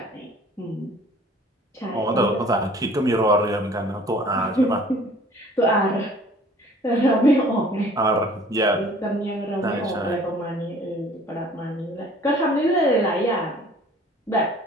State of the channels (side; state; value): both; normal; correlation 0.51